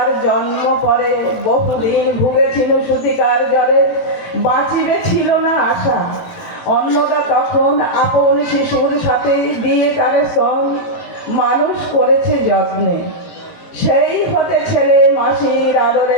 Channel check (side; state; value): right; late; 18 ms